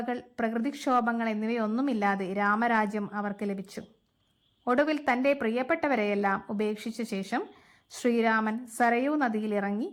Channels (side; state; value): both; identical; correlation 1.00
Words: പ്രകൃതിക്ഷോഭങ്ങൾ എന്നിവയൊന്നുമില്ലാതെ രാമരാജ്യം അവർക്ക് ലഭിച്ചു. ഒടുവിൽ തൻ്റെ പ്രിയപ്പെട്ടവരെയെല്ലാം ഉപേക്ഷിച്ച ശേഷം ശ്രീരാമൻ സരയൂ നദിയിലിറങ്ങി